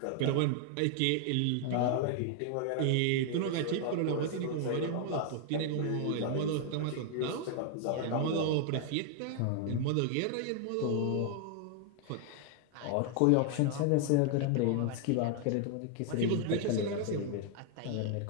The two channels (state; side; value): different; both; correlation 0.00